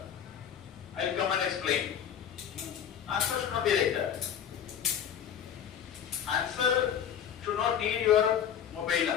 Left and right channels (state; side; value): quieter; right; 8.8 dB